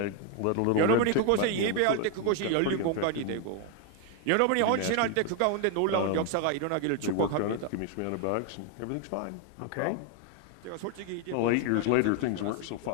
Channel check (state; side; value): different; both; correlation 0.01